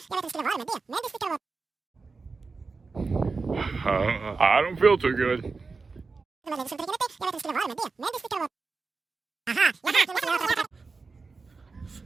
don't feel too good.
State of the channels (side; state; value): left; quieter; 4.3 dB